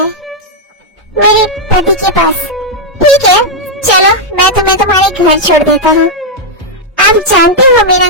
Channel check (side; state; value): both; normal; correlation -0.03